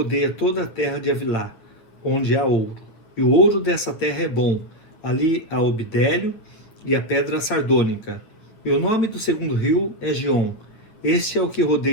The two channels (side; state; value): right; late; 9.0 ms